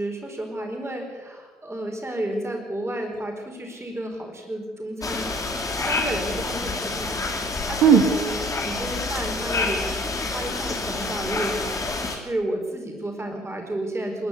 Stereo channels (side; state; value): both; normal; correlation 0.53